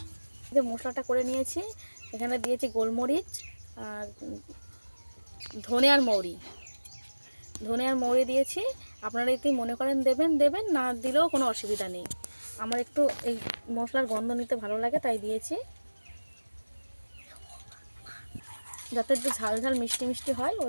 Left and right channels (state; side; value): inverted; both; correlation -1.00